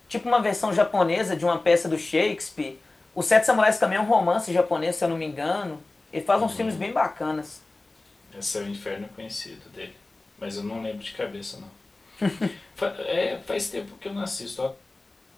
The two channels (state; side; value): quieter; right; 3.1 dB